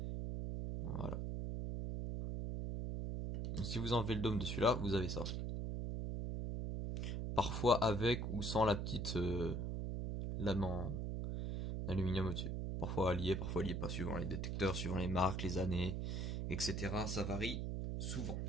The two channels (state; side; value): noise; right; hum, 2 dB below the sound